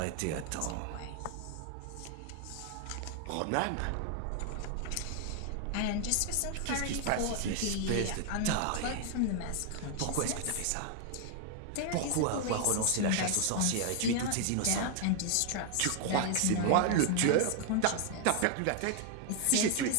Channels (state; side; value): different; both; correlation 0.00